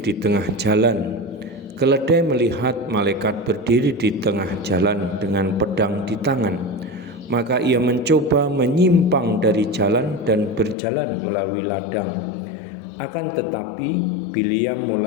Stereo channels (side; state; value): right; drops out; at 10.8 s